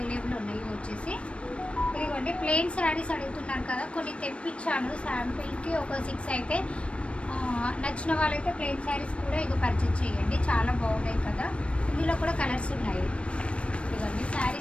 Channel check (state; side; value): late; right; 0.060 ms